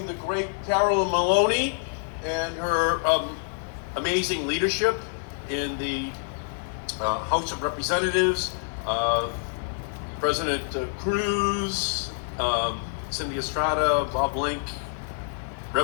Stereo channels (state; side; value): silent; right; digital silence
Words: the great Carolyn Maloney and her amazing leadership in the House of Representatives. President Cruz, Cindy Estrada, Bob Link,